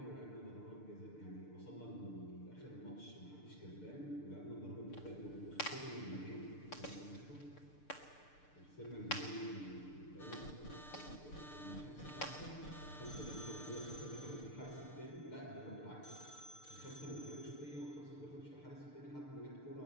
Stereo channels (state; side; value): late; right; 6.7 ms